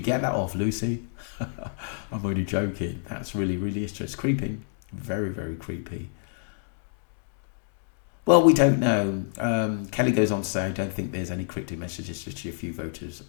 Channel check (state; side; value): silent; right; digital silence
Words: get that off, Lucy? I'm only joking. That's really, really interesting. It's creepy. Very, very creepy. Well, we don't know. Kelly goes on to say, I don't think there's any cryptic messages, just a few voters